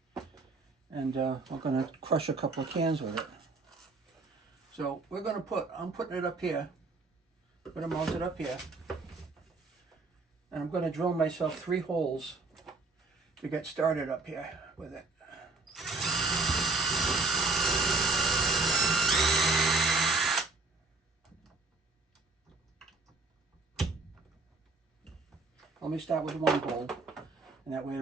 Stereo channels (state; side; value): quieter; left; 3.7 dB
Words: And we're going to crush a couple of cans with it. So we're going to I'm putting it up here. I'm going to mount it up here. And I'm going to drill myself 3 holes to get started up here with it. Let me start with 1 hole, and that way